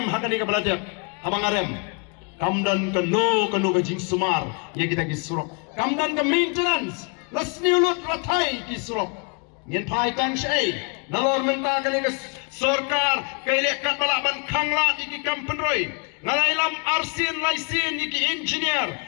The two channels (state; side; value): quieter; right; 36.0 dB